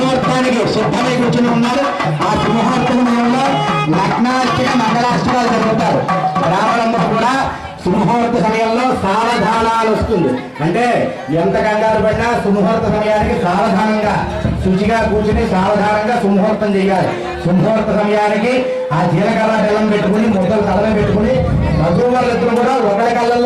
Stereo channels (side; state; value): both; identical; correlation 1.00